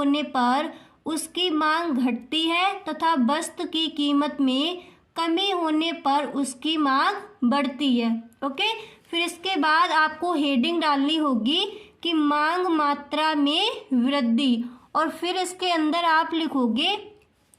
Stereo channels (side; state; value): both; identical; correlation 1.00